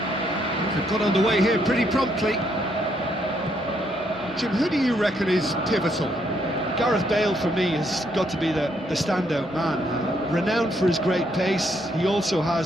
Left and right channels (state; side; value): normal; both; correlation 0.73